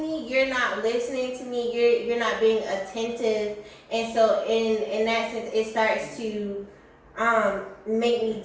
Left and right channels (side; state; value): both; identical; correlation 1.00